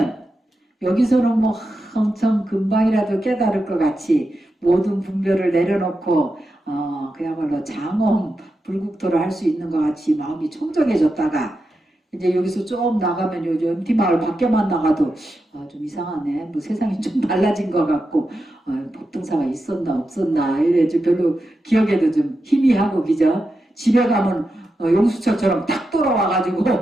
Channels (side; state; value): both; normal; correlation 0.88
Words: 여기서는 뭐 엄청 금방이라도 깨달을 것 같이 모든 분별을 내려놓고 그야말로 장엄 불국토를 할 수 있는 것 같이 마음이 청정해졌다가 이제 여기서 좀 나가면 요즘 MT마을 밖에만 나가도 좀 이상하네. 뭐 세상이 좀 달라진 것 같고 법등사가 있었나 없었나 이래 좀 별로 기억에도 좀 희미하고 그죠? 집에 가면 용수철처럼 딱 돌아와가지고